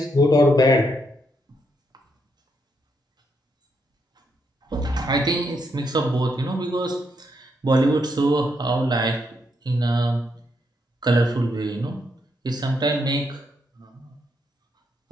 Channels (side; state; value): both; normal; correlation 0.78